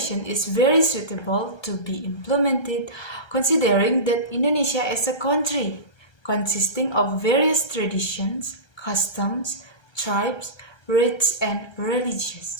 is very suitable to be implemented considering that Indonesia is a country consisting of various traditions, customs, tribes, rites, and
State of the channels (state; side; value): late; right; 1.3 ms